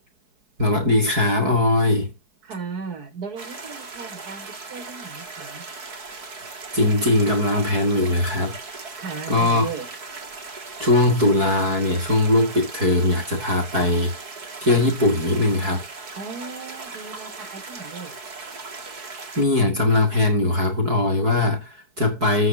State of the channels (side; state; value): left; late; 4.7 ms